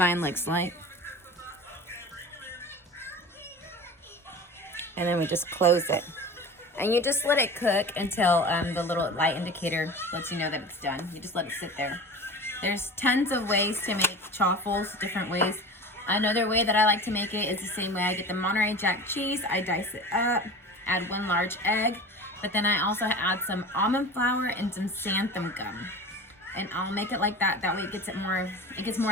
looks like. And then we just close it. And you just let it cook until the little light indicator lets you know that it's done. You just let it sit there. There's tons of ways to make chaffles, different ways. Another way that I like to make it is the same way. I get the Monterey Jack cheese, I dice it up, add one large egg, but then I also add some almond flour and some xanthan gum. And I'll make it like that. That way it gets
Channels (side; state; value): both; normal; correlation 0.34